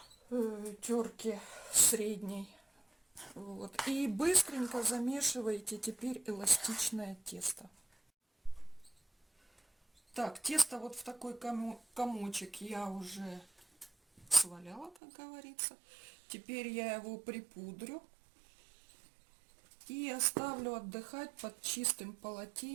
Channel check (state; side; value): drops out; left; at 15.0 s